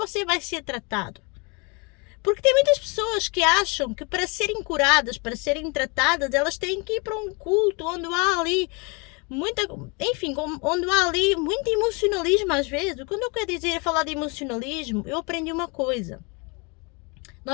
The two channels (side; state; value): right; quieter; 30.6 dB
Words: vai ser tratado? Porque tem muitas pessoas que acham que para serem curadas, para serem tratadas, elas têm que ir para um culto onde há ali onde há ali muito emocionalismo às vezes. Quando eu quero falar de emocionalismo, eu aprendi uma coisa.